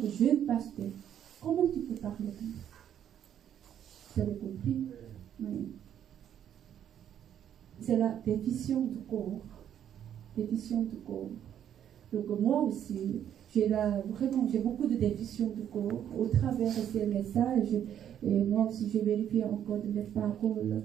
jeune pasteur. Comment tu peux parler comme ça? Vous avez compris? Oui. C'est la définition du corps. Donc moi aussi, j'ai beaucoup de définitions du corps au travers de ces messages. Et moi aussi, j'ai vérifié encore de mes paroles.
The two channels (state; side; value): quieter; left; 9.9 dB